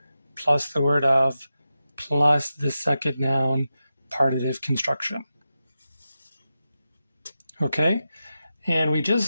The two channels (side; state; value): both; inverted; correlation -0.91